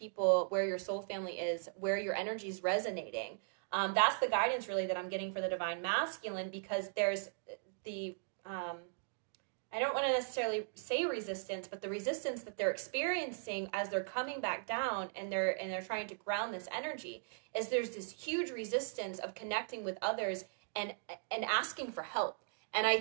where your soul family is, where your energy is resonating. That's the guidance really that I'm getting for the divine masculine, because there's the, I don't want to necessarily say resistance, but the resistance that they're experiencing as they're coming back down and they're trying to ground this energy, is there's this huge resistance of connecting with others and asking for help. And I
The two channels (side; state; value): left; silent; digital silence